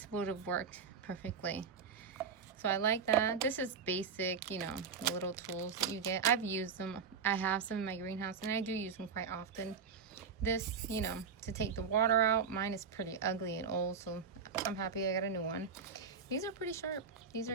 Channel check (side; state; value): left; quieter; 5.9 dB